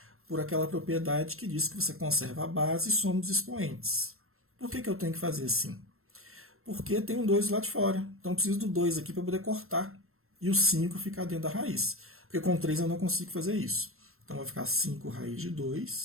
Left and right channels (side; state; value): left; late; 0.62 ms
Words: por aquela propriedade que diz que você conserva a base e soma os expoentes. Por que eu tenho que fazer assim? Porque tem um 2 lá de fora, então eu preciso do 2 aqui para poder cortar, e o 5 ficar dentro da raiz, porque com 3 eu não consigo fazer isso. Então vai ficar 5 raiz de